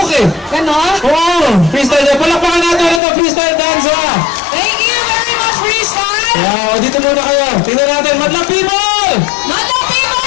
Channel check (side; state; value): right; drops out; at 3.0 s